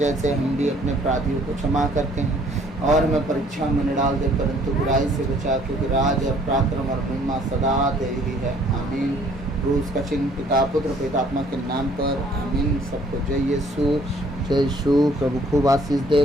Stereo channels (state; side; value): normal; both; correlation 0.59